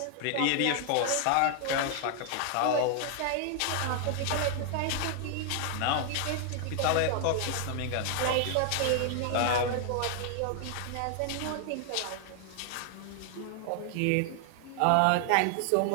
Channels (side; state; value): both; different; correlation 0.00